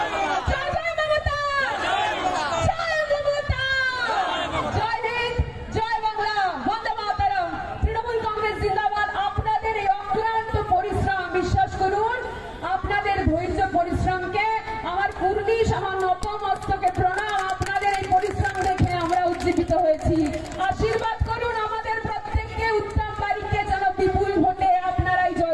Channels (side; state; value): both; identical; correlation 1.00